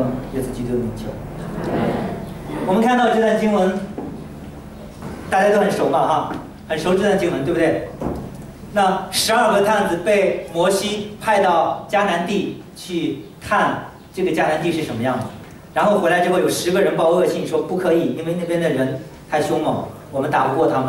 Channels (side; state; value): both; identical; correlation 1.00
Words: 耶稣基督的名求。我们看到这段经文，大家都很熟嘛哈，很熟这段经文，对不对？那12个探子被摩西派到迦南地去看这个迦南地是什么样的，然后回来之后有10个人报恶信说不可以，因为那边的人太凶猛，我们打不过他